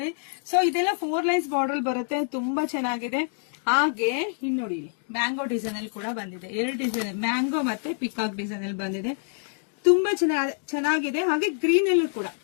ಸೊ ಇದೆಲ್ಲ 4 ಲೈನ್ಸ್ ಬಾರ್ಡರ್ ಬರುತ್ತೆ, ತುಂಬಾ ಚೆನ್ನಾಗಿದೆ. ಹಾಗೆ ಇನ್ ನೋಡಿ, ಮ್ಯಾಂಗೋ ಡಿಸೈನ್ ಅಲ್ಲಿ ಕೂಡ ಬಂದಿದೆ. 2 ಡಿಸೈನ್, ಮ್ಯಾಂಗೋ ಮತ್ತೆ ಪಿಕಾಕ್ ಡಿಸೈನ್ ಅಲ್ಲಿ ಬಂದಿದೆ, ತುಂಬಾ ಚೆನ್ನಾಗಿದೆ. ಹಾಗೆ ಗ್ರೀನ್ ಅಲ್ಲೂ ಕೂಡ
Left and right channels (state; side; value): silent; right; 61 dB below the other